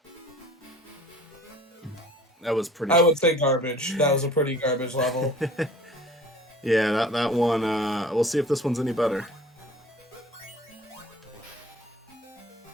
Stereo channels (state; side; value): normal; both; correlation 0.47